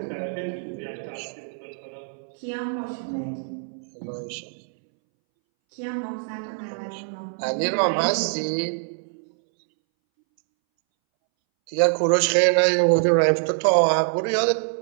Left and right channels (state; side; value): silent; left; 62 dB below the other